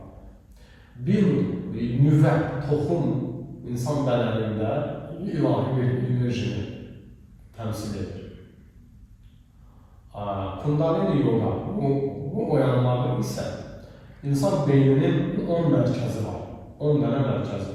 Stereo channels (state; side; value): identical; both; correlation 1.00